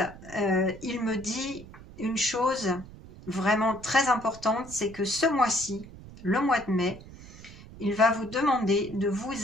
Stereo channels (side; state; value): right; noise; rumble, 17 dB below the sound